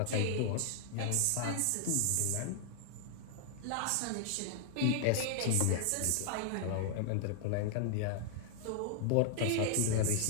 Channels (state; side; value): different; both; correlation 0.00